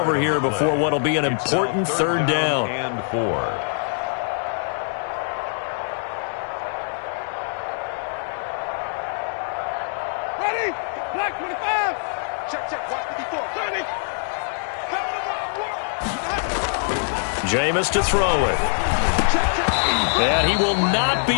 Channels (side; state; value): right; silent; 63 dB below the other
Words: here before what will be an important third down. And 4. Ready? Black 25. Check, check. Watch 54. 30. Jameis to throw it. And he will not be